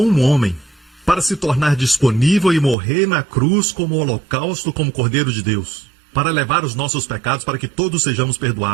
um homem para se tornar disponível e morrer na cruz como holocausto, como Cordeiro de Deus, para levar os nossos pecados, para que todos sejamos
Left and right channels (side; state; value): left; drops out; at 2.8 s